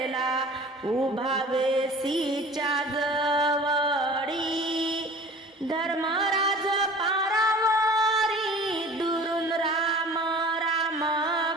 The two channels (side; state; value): both; normal; correlation 0.44